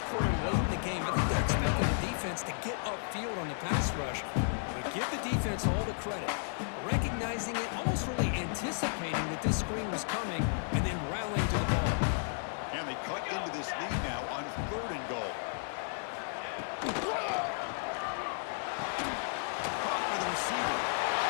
quarter late in the game. I think they're expecting the defense to get upfield on the pass rush. But give the defense all the credit. Recognizing it, almost really anticipating that this screen was coming, and then rallying to the ball. And they cut into this lead now on 3rd and goal. Caught by the receiver.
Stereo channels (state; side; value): silent; right; digital silence